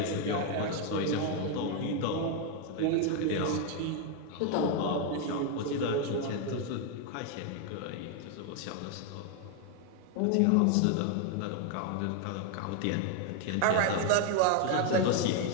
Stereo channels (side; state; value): both; different; correlation 0.01